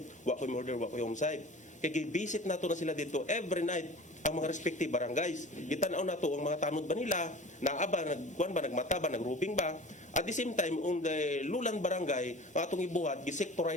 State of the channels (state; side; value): normal; both; correlation 0.40